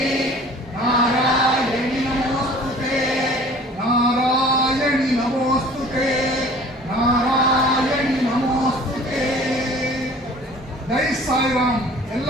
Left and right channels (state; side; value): normal; both; correlation 0.48